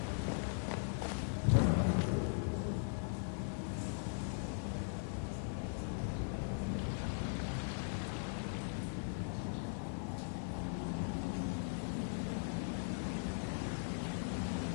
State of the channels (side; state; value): right; silent; 51 dB below the other